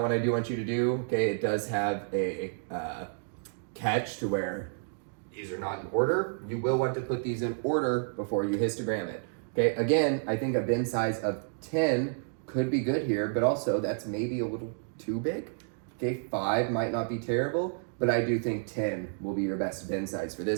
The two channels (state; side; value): silent; left; digital silence